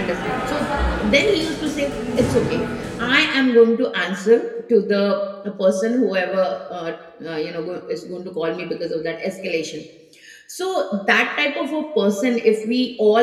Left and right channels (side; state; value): both; identical; correlation 1.00